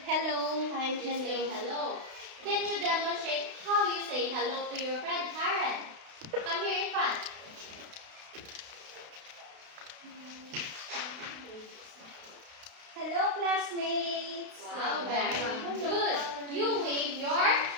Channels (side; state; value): left; late; 32 ms